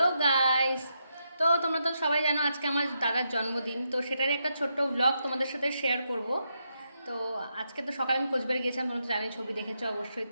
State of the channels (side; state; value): both; inverted; correlation -0.82